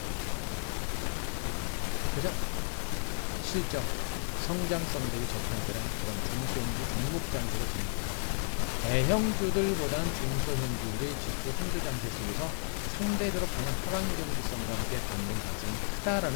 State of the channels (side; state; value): right; silent; 56 dB below the other